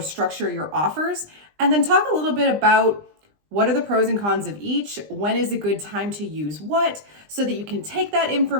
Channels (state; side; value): late; left; 20 ms